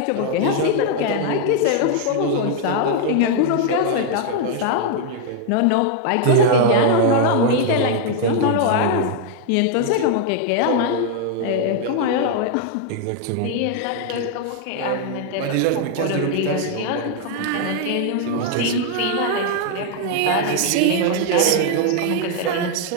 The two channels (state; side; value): different; both; correlation 0.00